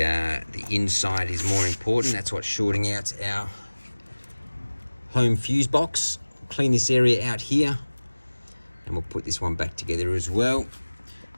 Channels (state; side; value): inverted; both; correlation -1.00